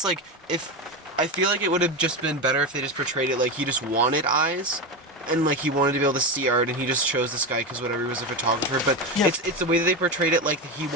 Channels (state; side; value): normal; both; correlation 0.16